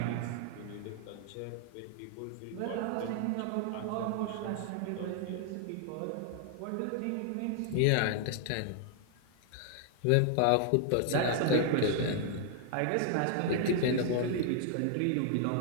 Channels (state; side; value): different; both; correlation 0.00